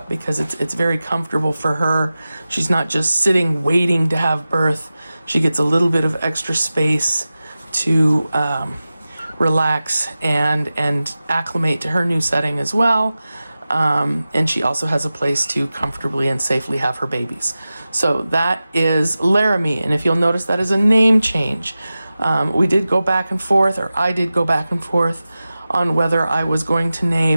because it's very comfortable for her. She's not just sitting waiting to have birth. She gets a little bit of extra space to relax and acclimate to her new setting as well. And she also has a place to comfortably and safely have her babies. So that is Laramie. And if you'll notice, that is a name change. We did go back and forth, or I did go back and forth on whether I was going to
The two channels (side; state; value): both; inverted; correlation -0.95